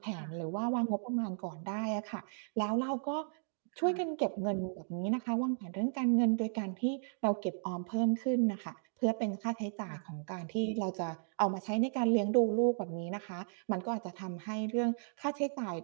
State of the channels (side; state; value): left; silent; digital silence